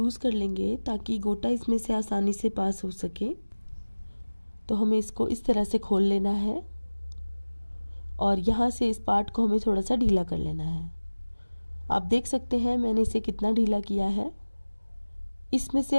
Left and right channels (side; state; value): both; inverted; correlation -1.00